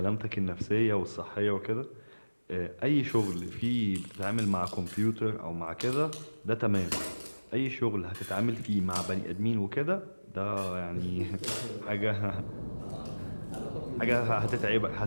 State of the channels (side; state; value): both; inverted; correlation -1.00